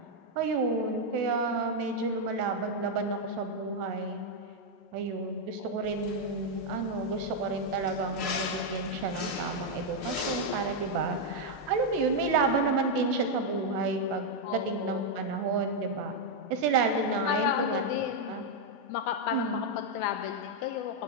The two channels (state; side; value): normal; both; correlation 0.00